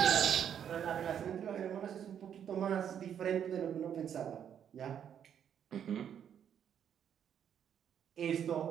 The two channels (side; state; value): left; quieter; 8.9 dB